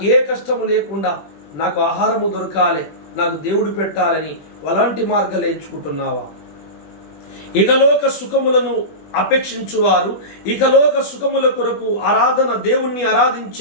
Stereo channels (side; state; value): right; late; 20 ms